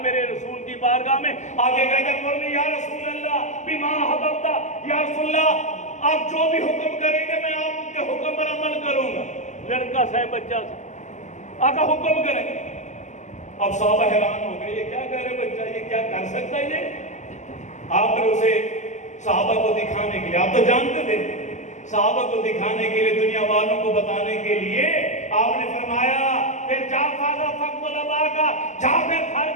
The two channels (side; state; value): right; late; 0.34 ms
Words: میرے رسول کی بارگاہ میں، آگے کہتے مرنی یا رسول اللہ بما حببتا، یا رسول اللہ آپ جو بھی حکم کریں گے میں آپ کے حکم پر عمل کروں گا۔ لڑکا سے بچہ سے آقا حکم کریں گے۔ اب صحابہ حیران ہو گئے، یہ کیا کہہ رہے بچہ، یہ کیا کر سکتا ہے یہ؟ آپ نے اسے صحابہ کو دکھانے کے لیے، آپ تو جانتے تھے، صحابہ کو دکھانے کے لیے، دنیا والوں کو بتانے کے لیے آپ نے فرمایا پھر جا فاضا فقد الابا کا، جا پھر گھر